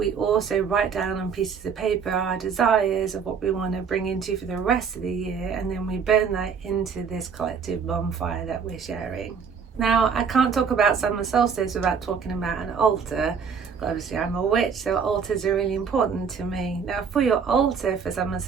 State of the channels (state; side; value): quieter; left; 6.3 dB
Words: also write down on pieces of paper our desires of what we want to bring into for the rest of the year, and then we burn that into this collective bonfire that we're sharing. Now, I can't talk about summer solstice without talking about an altar. Obviously, I'm a witch, so altars are really important to me. Now, for your altar for summer